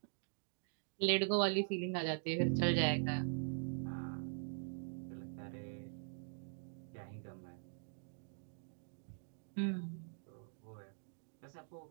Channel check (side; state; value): left; silent; digital silence